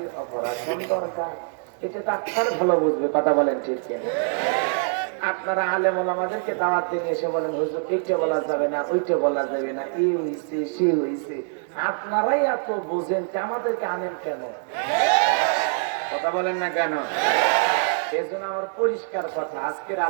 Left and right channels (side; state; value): left; silent; 56 dB below the other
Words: অপারেশন দরকার, এটা ডাক্তার ভালো বুঝবে। কথা বলেন ঠিক কিনা? আপনারা আলেম ওলামাদেরকে দাওয়াত দিয়ে এসে বলেন হুজুর এইটা বলা যাবে না, ওইটা বলা যাবে না, এই হইছে সে হইছে। আপনারাই এত বোঝেন, আমাদেরকে আনেন কেন? কথা বলেন না কেন? এই জন্য আমার পরিষ্কার কথা, আজকের